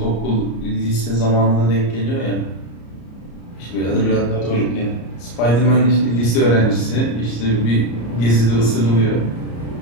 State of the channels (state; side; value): late; right; 34 ms